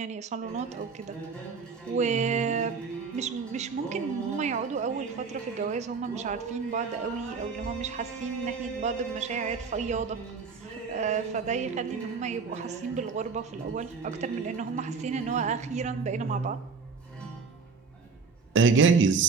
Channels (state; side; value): quieter; left; 5.0 dB